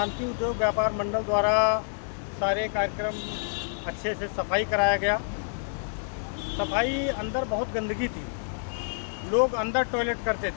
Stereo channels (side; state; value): right; silent; digital silence